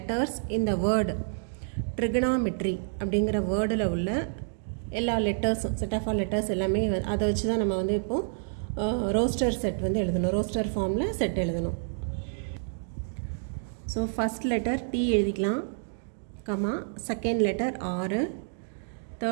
இந்த வேர்டு ட்ரிகனாமெட்ரி அப்படிங்கிற வேர்டில் உள்ள எல்லா லெட்டர்ஸும், செட் ஆஃப் ஆல் லெட்டர்ஸ் எல்லாமே அதை வச்சு தான் நம்ம வந்து இப்போது ரோஸ்டர் செட் வந்து எழுதணும், ரோஸ்டர் ஃபார்மில் செட் எழுதணும். ஸோ ஃபஸ்ட் லெட்டர் T எழுதிக்கலாம், comma second letter R,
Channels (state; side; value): silent; left; digital silence